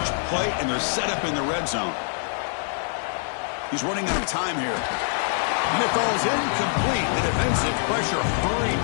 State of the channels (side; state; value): right; silent; digital silence